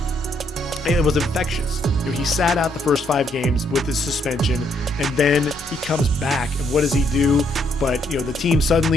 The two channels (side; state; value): both; normal; correlation 0.72